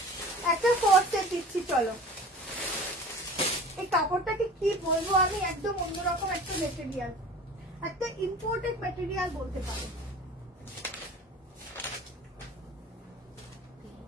একটা কোট সেট দিচ্ছি। চলো এই কাপড়টাকে কি বলবো আমি, একদম অন্যরকম একটা মেটেরিয়াল, একটা ইম্পোর্টেড মেটেরিয়াল বলতে পারো।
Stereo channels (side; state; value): both; normal; correlation 0.41